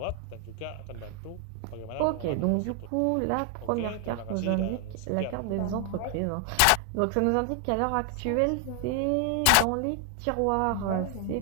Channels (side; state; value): both; different; correlation 0.00